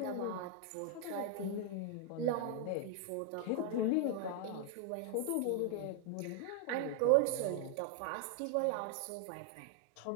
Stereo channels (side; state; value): both; different; correlation 0.00